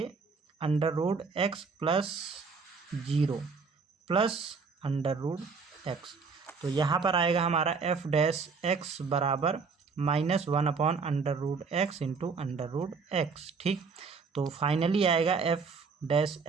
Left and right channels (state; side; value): quieter; left; 5.0 dB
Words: under root x plus zero plus under root x, तो यहाँ पर आएगा हमारा एफ डैश एक्स बराबर -1 upon under root x into under root x, ठीक। तो फाइनली आएगा एफ डैश